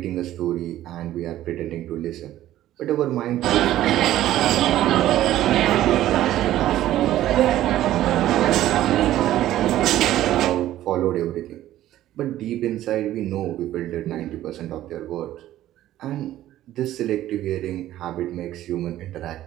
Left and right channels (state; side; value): quieter; left; 13.6 dB